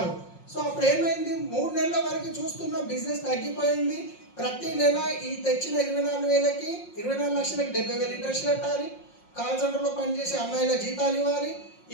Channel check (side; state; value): right; late; 5.6 ms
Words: సో అప్పుడు ఏమైంది, 3 నెలల వరకు చూస్తున్న బిజినెస్ తగ్గిపోయింది. ప్రతి నెల ఈ తెచ్చిన 24,000కి 24 లక్షలకి 70,000 ఇంట్రెస్ట్ కట్టాలి, కాల్ సెంటర్లో పనిచేసే అమ్మాయిల జీతాలు ఇవ్వాలి,